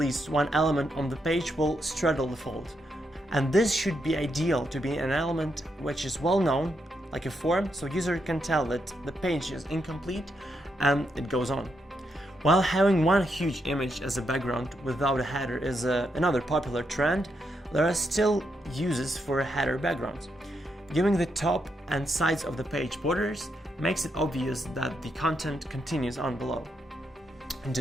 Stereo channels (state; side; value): normal; both; correlation 0.81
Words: one element on the page will straddle the fold. And this should be ideal to be an element which is well known, like a form, so user can tell that the page is incomplete and it goes on. While having one huge image as a background without a header is another popular trend, there are still uses for header backgrounds. Giving the top and sides of the page borders makes it obvious that the content continues on below. And